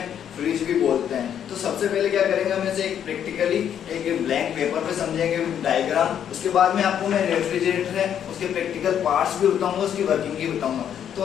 फ्रिज भी बोलते हैं। तो सबसे पहले क्या करेंगे, हम इसे एक प्रैक्टिकली एक ब्लैंक पेपर पे समझेंगे डायग्राम। उसके बाद में आपको मैं रेफ्रिजरेटर है उसके प्रैक्टिकल पार्ट्स भी बताऊंगा, उसकी वर्किंग भी बताऊंगा।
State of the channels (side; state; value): right; quieter; 9.3 dB